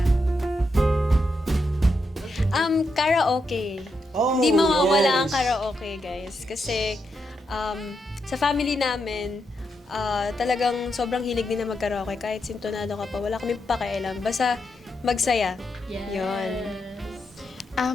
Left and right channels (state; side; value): normal; both; correlation 0.83